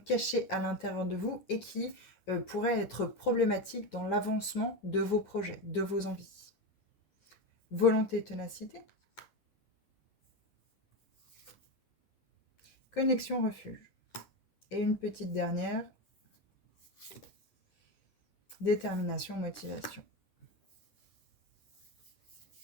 à l'intérieur de vous et qui pourraient être problématiques dans l'avancement de vos projets, de vos envies. Volonté, ténacité. Connexion, refuge. Et une petite dernière. Détermination, motivation.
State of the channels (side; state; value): right; late; 10 ms